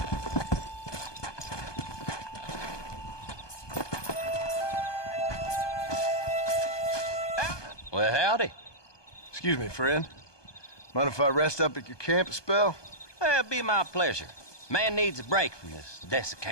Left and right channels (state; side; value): late; right; 1.2 ms